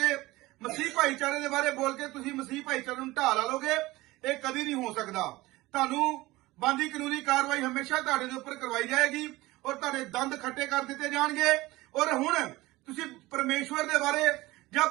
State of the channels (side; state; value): left; quieter; 19.4 dB